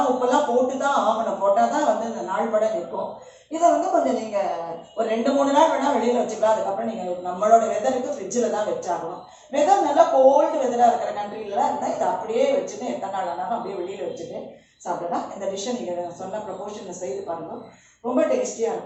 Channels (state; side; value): identical; both; correlation 1.00